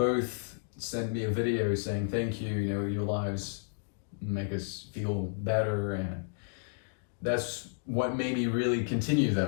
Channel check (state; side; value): silent; right; digital silence